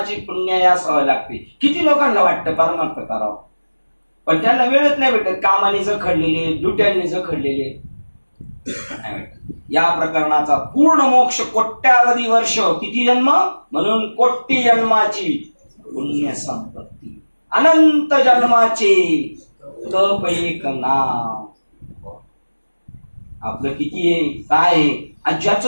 पुण्य असावं लागते. किती लोकांना वाटतं परमार्थ करावं, पण त्यांना वेळच नाही भेटत, कामाने जखडलेले, दुट्यांनी जखडलेले. या प्रकरणाचा पूर्ण मोक्ष कोट्यावधी वर्ष, किती जन्म, म्हणून कोटी जन्माची पुण्य संपत्ती, अनंत जन्माचे तप एक नाम. आपलं किती आहे काय आहे, आणि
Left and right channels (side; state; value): both; inverted; correlation -1.00